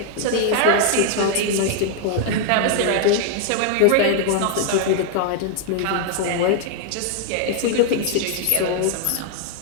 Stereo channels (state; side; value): different; both; correlation 0.00